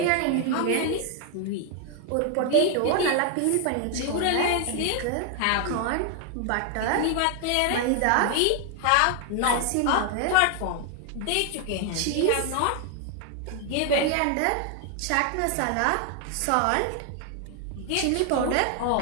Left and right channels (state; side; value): different; both; correlation 0.00